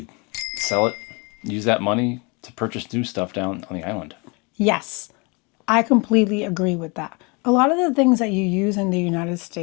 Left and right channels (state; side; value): quieter; right; 30.0 dB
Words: sell it, use that money to purchase new stuff down on the island. Yes, I completely agree with that. A lot of the things that you use in the United